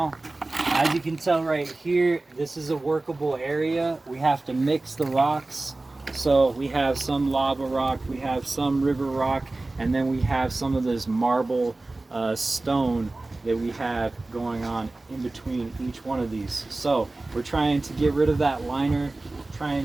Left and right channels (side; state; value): left; quieter; 3.0 dB